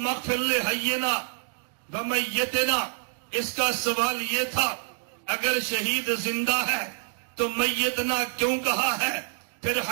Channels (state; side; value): silent; left; digital silence